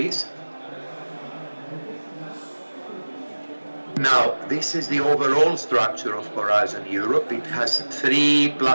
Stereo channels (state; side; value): inverted; both; correlation -1.00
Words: Now, this is the overall structure of Horizon Europe. It has